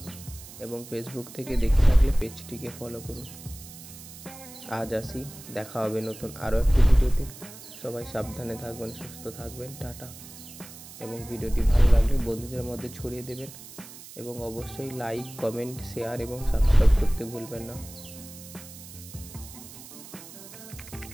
এবং ফেসবুক থেকে দেখে থাকলে পেজটিকে ফলো করুন। আজ আসি, দেখা হবে নতুন আরও একটি ভিডিওতে। সবাই সাবধানে থাকবেন, সুস্থ থাকবেন, টাটা। এবং ভিডিওটি ভালো লাগলে বন্ধুদের মধ্যে ছড়িয়ে দেবেন এবং অবশ্যই লাইক, কমেন্ট, শেয়ার এবং সাবস্ক্রাইব করতে ভুলবেন না।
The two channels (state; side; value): noise; right; hiss, 16 dB below the sound